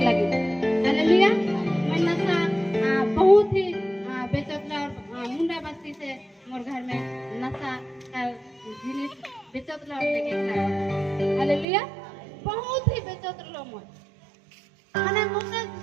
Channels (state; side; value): drops out; left; at 11.7 s